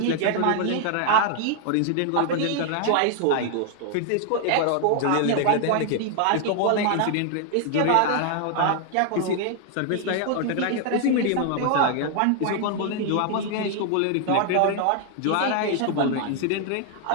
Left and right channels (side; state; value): both; different; correlation 0.00